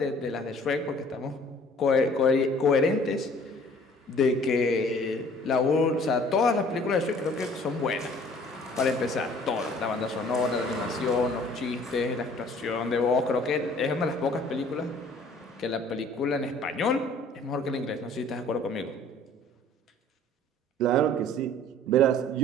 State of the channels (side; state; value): both; normal; correlation 0.53